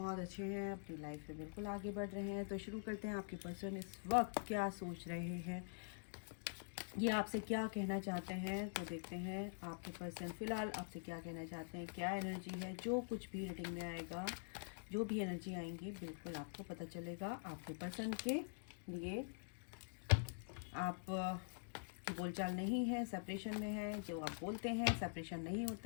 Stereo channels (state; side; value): silent; right; digital silence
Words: अच्छे हैं, अपनी लाइफ में बिल्कुल आगे बढ़ रहे हैं। तो शुरू करते हैं। आपके पर्सन इस वक्त क्या सोच रहे हैं, ये आपसे क्या कहना चाहते हैं, तो देखते हैं आपके पर्सन फ़िलहाल आपसे क्या कहना चाहते हैं। क्या एनर्जी है, जो कुछ भी रीडिंग में आएगा, जो भी एनर्जी आएंगी बिल्कुल आपको पता चलेगा। आपके पर्सन के लिए आप की बोलचाल नहीं है, सेपरेशन में है। जो आप बोलते हैं सेपरेशन नहीं